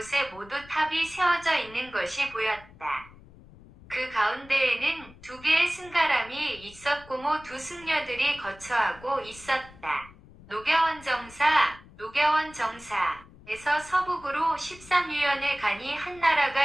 모두 탑이 세워져 있는 것이 보였다. 그 가운데에는 2개의 승가람이 있었고 두 승려들이 거처하고 있었다. 노겨원 정사에서 서북으로 13유연의 간이 한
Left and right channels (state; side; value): noise; left; rumble, 22 dB below the sound